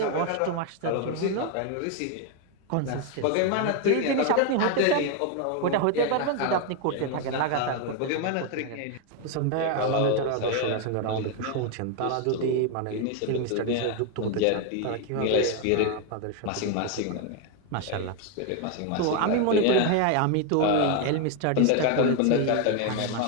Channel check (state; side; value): different; both; correlation 0.01